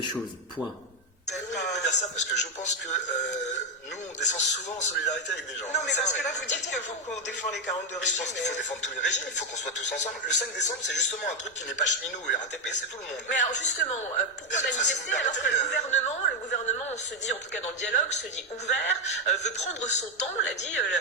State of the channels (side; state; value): both; normal; correlation 0.05